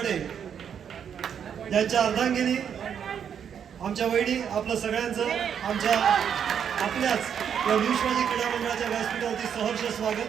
यांच्या अर्धांगिनी आमच्या वहिनी, आपलं सगळ्यांचं आपल्याच या न्यू शिवाजी क्रीडा मंडळाच्या व्यासपीठावरती सहर्ष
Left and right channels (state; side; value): quieter; left; 8.1 dB